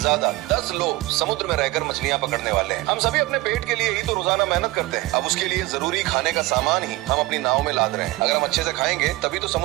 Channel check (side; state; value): left; quieter; 19.7 dB